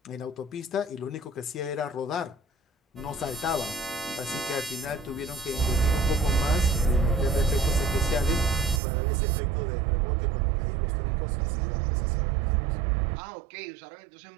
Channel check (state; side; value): drops out; left; at 8.8 s